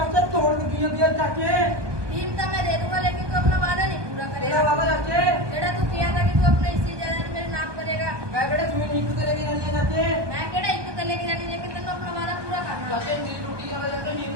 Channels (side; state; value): left; late; 1.2 ms